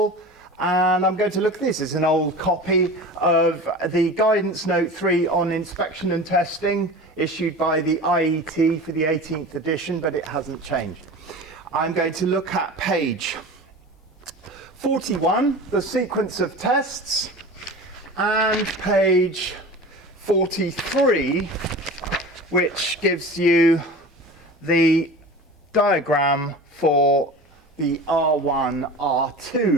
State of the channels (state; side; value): normal; both; correlation 0.35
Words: and I'm going to look at this. It's an old copy of the Guidance Note 3 on inspection and testing issued by the IET for the 18th edition, but it hasn't changed. I'm going to look at page 41, the sequence of tests, and page 43, which gives you the diagram for the R1,